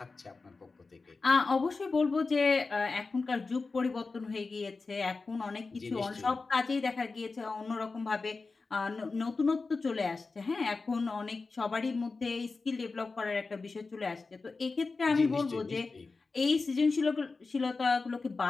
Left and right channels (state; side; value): quieter; right; 4.0 dB